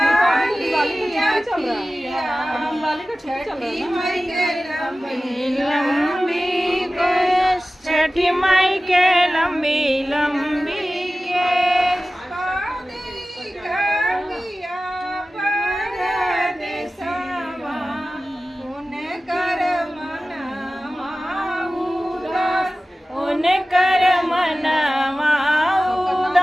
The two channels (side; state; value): both; normal; correlation 0.96